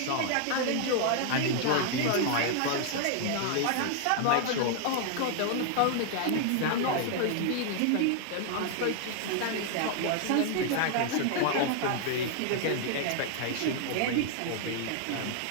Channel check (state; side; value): different; both; correlation 0.00